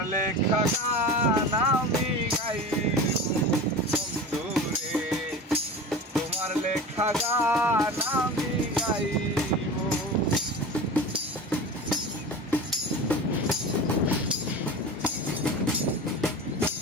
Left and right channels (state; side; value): normal; both; correlation 0.32